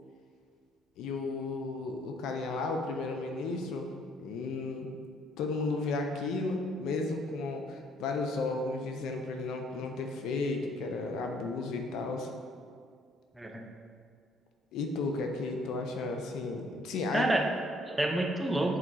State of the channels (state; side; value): normal; both; correlation 0.64